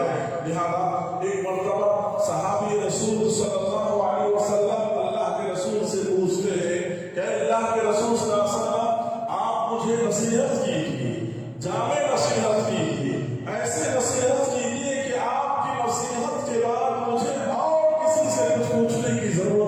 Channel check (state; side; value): identical; both; correlation 1.00